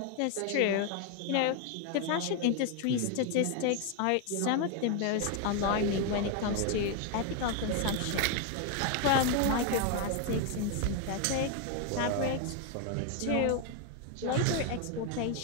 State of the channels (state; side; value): different; both; correlation 0.01